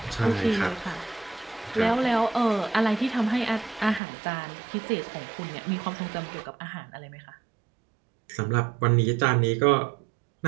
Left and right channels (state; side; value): drops out; left; at 4.0 s